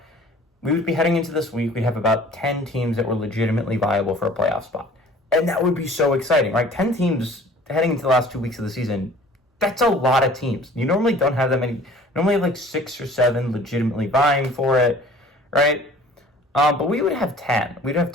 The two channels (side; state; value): both; normal; correlation 0.49